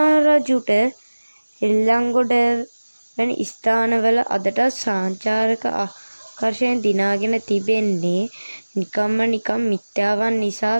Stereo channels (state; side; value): inverted; both; correlation -1.00